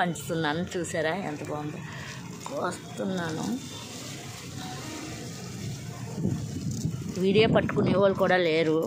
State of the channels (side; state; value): both; identical; correlation 1.00